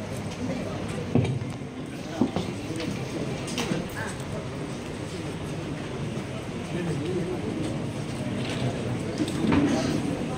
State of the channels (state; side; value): identical; both; correlation 1.00